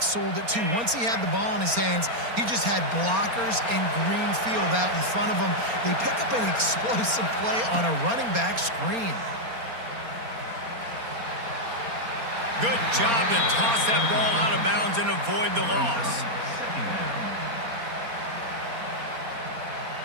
sold it too. Once he had the ball in his hands, he just had blockers and green field out in front of him. They pick up an explosive play on a running back screen. Good job to toss that ball out of bounds and avoid the loss.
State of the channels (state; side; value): late; left; 4.3 ms